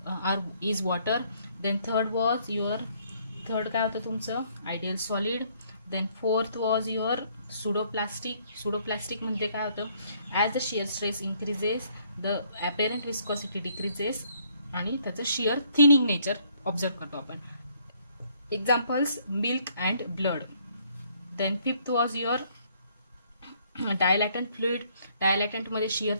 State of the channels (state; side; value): inverted; both; correlation -0.66